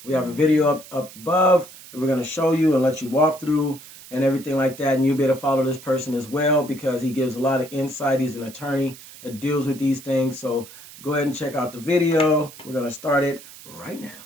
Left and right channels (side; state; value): right; noise; hiss, 18 dB below the sound